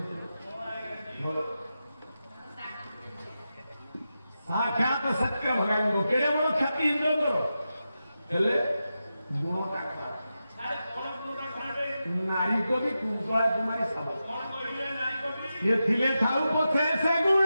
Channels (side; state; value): both; inverted; correlation -0.90